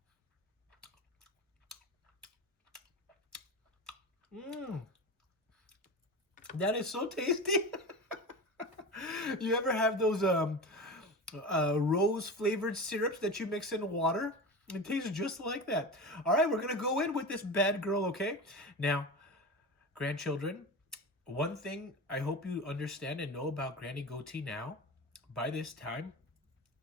That is so tasty. You ever have those rose flavored syrups that you mix in water? It tastes just like that. All right, we're gonna go in with this bad girl, okay? Now, grandchildren, one thing I hope you understand and know about Granny Goatee now, by this time,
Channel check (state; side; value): normal; both; correlation 0.28